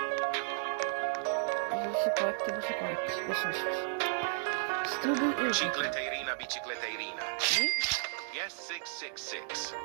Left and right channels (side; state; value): left; silent; digital silence